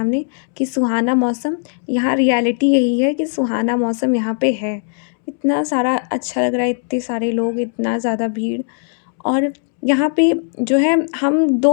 कि सुहाना मौसम। यहाँ रियलिटी यही है कि सुहाना मौसम यहाँ पे है। इतना सारा अच्छा लग रहा है, इतने सारे लोग, इतना ज़्यादा भीड़। और यहाँ पे जो है, हम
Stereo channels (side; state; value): right; silent; 67 dB below the other